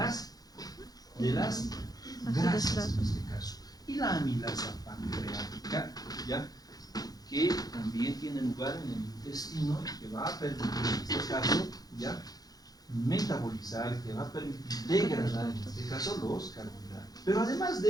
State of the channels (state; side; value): late; right; 0.19 ms